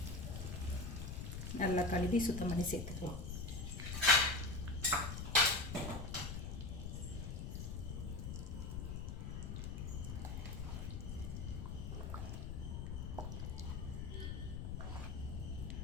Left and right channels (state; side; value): noise; left; rumble, 4 dB below the sound